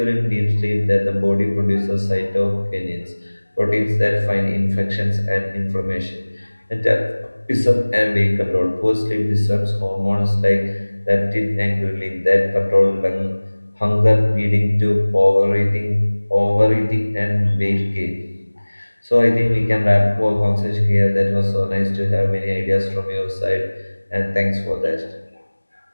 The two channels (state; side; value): inverted; both; correlation -1.00